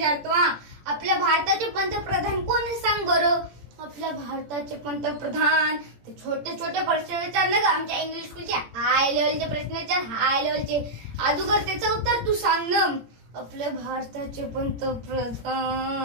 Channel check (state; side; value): late; left; 17 ms